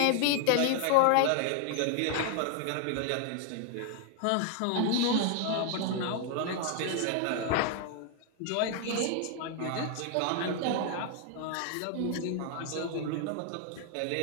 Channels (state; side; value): different; both; correlation 0.00